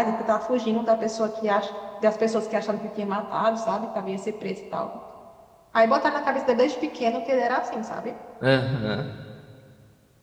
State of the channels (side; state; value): both; identical; correlation 1.00